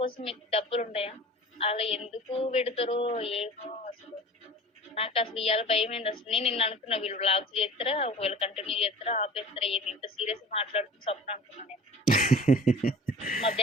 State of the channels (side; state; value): both; normal; correlation 0.41